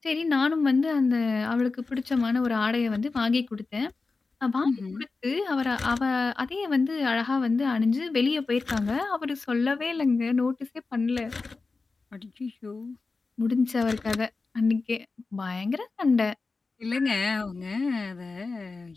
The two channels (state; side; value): quieter; right; 4.0 dB